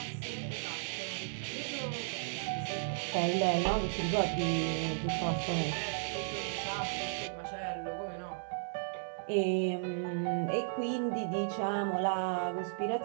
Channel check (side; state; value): left; silent; digital silence